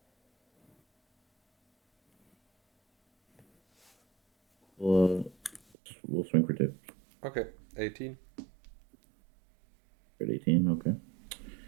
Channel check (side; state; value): left; drops out; at 5.6 s